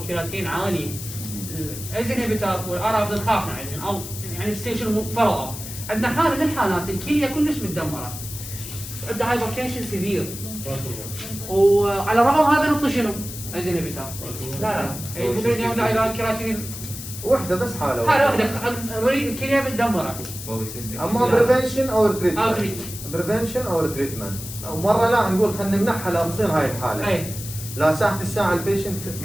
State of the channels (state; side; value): noise; left; hiss, 10 dB below the sound